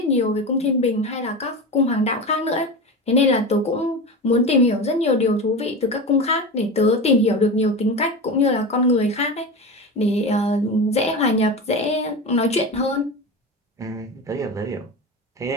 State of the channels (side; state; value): both; normal; correlation 0.25